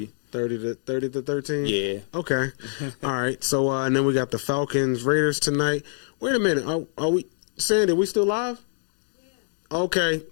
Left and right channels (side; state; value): right; silent; digital silence